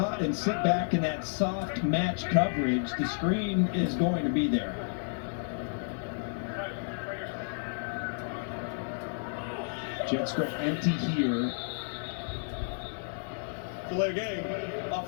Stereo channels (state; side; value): silent; right; digital silence